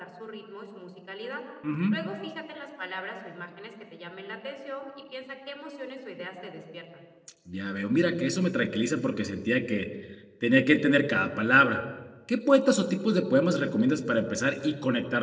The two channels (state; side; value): identical; both; correlation 1.00